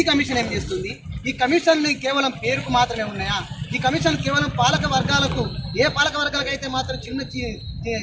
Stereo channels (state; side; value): identical; both; correlation 1.00